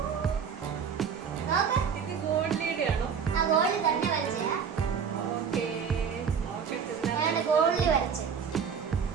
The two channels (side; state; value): left; quieter; 6.8 dB